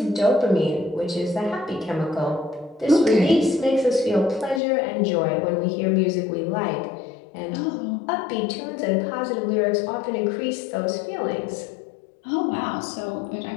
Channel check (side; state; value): right; drops out; at 4.6 s